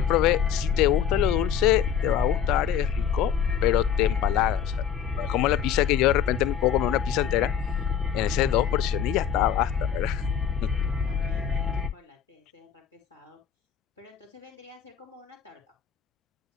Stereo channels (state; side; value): quieter; right; 8.3 dB